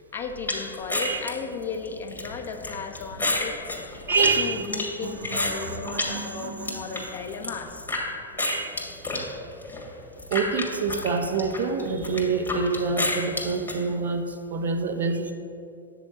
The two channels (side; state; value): both; inverted; correlation -0.34